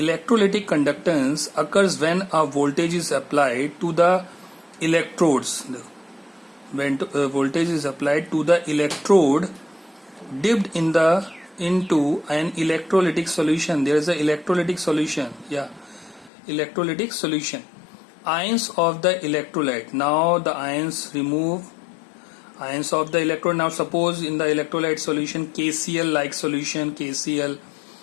conductance occurs when a voltage is applied to the electrodes. When voltage is applied to the electrode dipped into an electrolytic solution. There is an electrolytic solution. Electrolytic solution. Ions of the electrolyte. Now the ions remove ions of the electrode. Now suppose in the electrolyte solution KCl like solution KCl.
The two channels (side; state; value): right; drops out; at 16.3 s